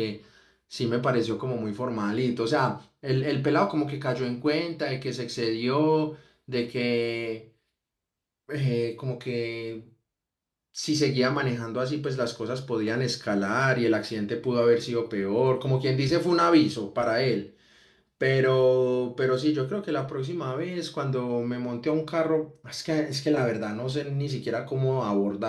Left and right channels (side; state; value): both; identical; correlation 1.00